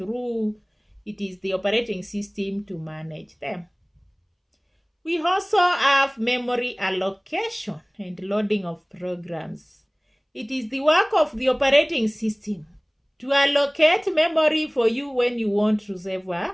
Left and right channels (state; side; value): identical; both; correlation 1.00